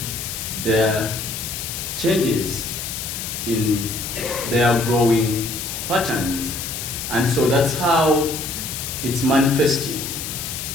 there are changes in their growing patterns. And so that's how it's manifesting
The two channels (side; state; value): left; noise; hiss, 6 dB below the sound